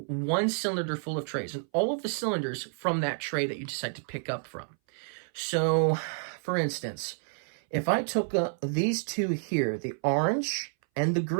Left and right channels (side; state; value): left; silent; 58 dB below the other